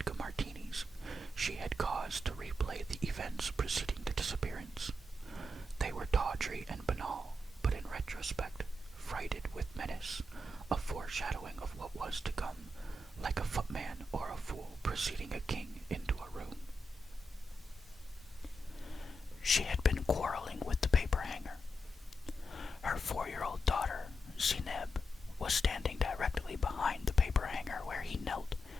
martinis, she had cause to replay the events preceding the disappearance. They were tawdry and banal, but in retrospect, freighted with menace, a foreshadowing of what was to come, like a footman or a fool preceding a king into a room. She had been quarreling with the paper hanger. Her 4-year-old daughter, Zineb, was standing directly behind the paper hanger where he knelt,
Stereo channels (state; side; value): normal; both; correlation 0.85